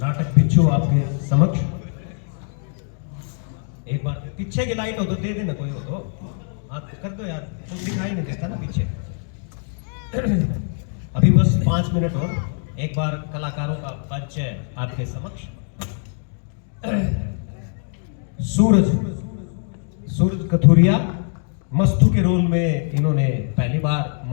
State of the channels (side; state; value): right; silent; 63 dB below the other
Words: नाटक बिच्छू आपके समक्ष। एक बार पीछे की लाइट हो तो दे देना, कोई हो तो हाथ कर दो यार, तुम दिखाई नहीं देता ना पीछे। अभी बस 5 मिनट और, एक बार कलाकारों का परिचय आपके समक्ष। सूरज कथुरिया, मस्तू के रोल में इन्होंने पहली बार